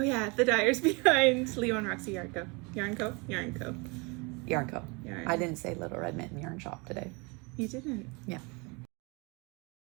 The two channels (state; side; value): quieter; left; 29.2 dB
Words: yeah, the dyers behind Leo and Roxy Yarn Co. Yarn Co. Yarn Co. I didn't say Little Red Mitten Yarn Shop today. You didn't? Yeah.